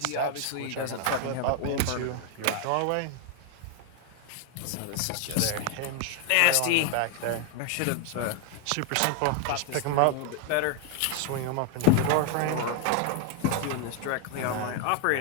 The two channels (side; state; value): both; different; correlation 0.00